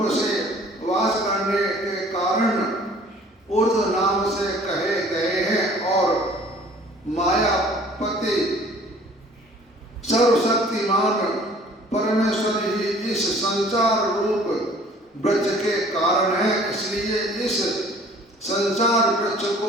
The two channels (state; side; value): normal; both; correlation 0.52